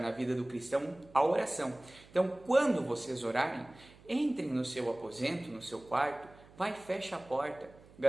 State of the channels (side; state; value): right; noise; hum, 23 dB below the sound